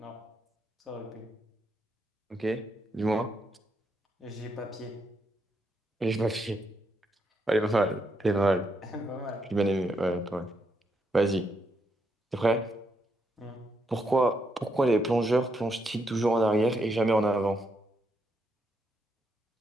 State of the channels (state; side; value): normal; both; correlation 0.79